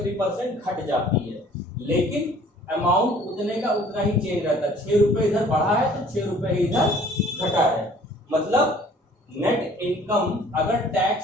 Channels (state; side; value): normal; both; correlation 0.53